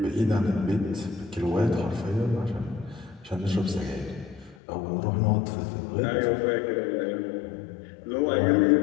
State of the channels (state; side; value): drops out; right; at 4.5 s